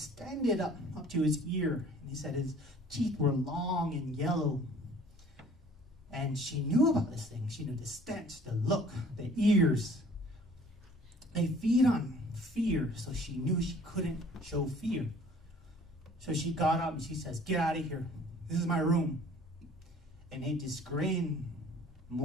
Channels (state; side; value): normal; both; correlation 0.52